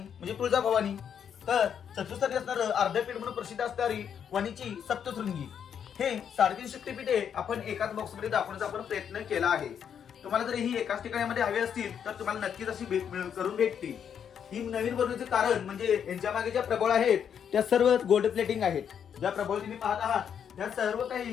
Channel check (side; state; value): right; quieter; 8.1 dB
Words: तुळजाभवानी, तर चतुर्थ स्थानी असणारं अर्धपीठ म्हणून प्रसिद्ध असणारी वणीची सप्तशृंगी. हे 3.5 शक्तिपीठे आपण एकाच बॉक्स मध्ये दाखवण्याचा आपण प्रयत्न केला आहे. तुम्हाला जर ही एकाच ठिकाणामध्ये हवी असतील तर तुम्हाला नक्कीच अशी करून भेटतील. ही नवीन बनवण्याचे कारण म्हणजे यांच्या मागे ज्या प्रबळ आहेत त्या सर्व गोल्ड प्लेटिंग आहेत. ज्या प्रबळ तुम्ही पाहत आहात त्या सर्व